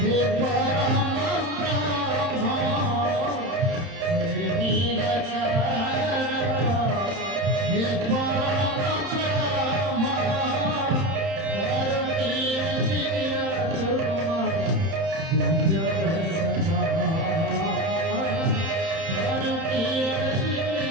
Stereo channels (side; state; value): left; late; 31 ms